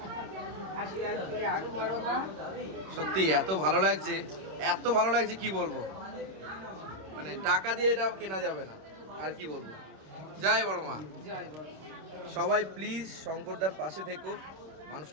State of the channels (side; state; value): left; late; 26 ms